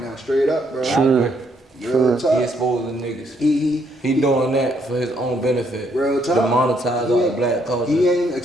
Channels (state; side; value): normal; both; correlation 0.71